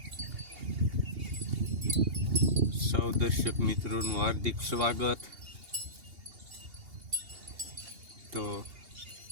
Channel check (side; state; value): left; late; 2.8 ms